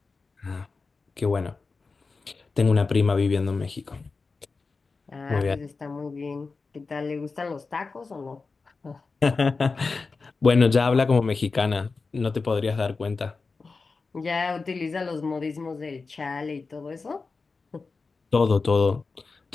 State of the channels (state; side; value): quieter; right; 4.3 dB